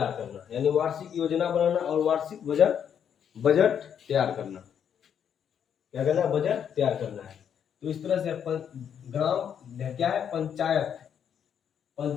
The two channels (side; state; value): right; quieter; 8.4 dB